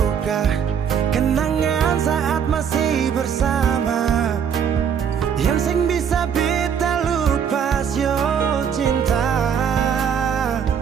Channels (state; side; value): quieter; left; 7.7 dB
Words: kenangan saat masih bersama, yang sing bisa beta lupa yo cinta.